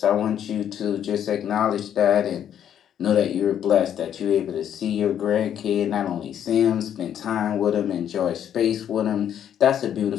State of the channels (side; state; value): right; quieter; 9.7 dB